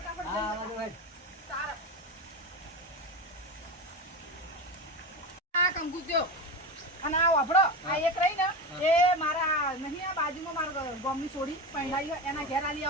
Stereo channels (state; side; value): normal; both; correlation 0.22